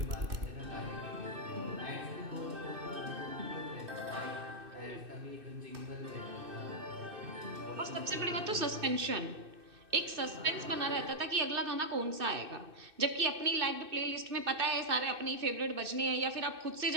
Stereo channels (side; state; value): left; late; 2.6 ms